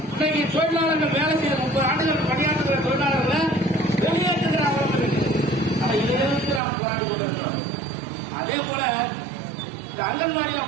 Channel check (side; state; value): left; drops out; at 6.6 s